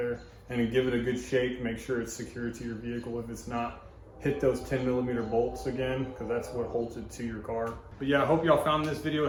and then give it a good shake. Make sure it's secured to your vehicle. If it's not, hit those 10mm bolts again, because that's what holds it to your car. But yeah, I hope y'all found this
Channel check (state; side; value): identical; both; correlation 1.00